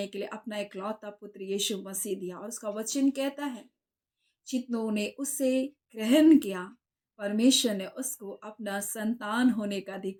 के लिए अपना इकलौता पुत्र यीशु मसीह दिया, और उसका वचन कहता है, जितनों ने उसे ग्रहण किया, परमेश्वर ने उसको अपना संतान होने का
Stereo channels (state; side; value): identical; both; correlation 1.00